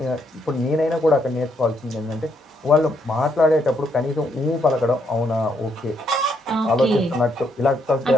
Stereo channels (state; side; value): normal; both; correlation 0.74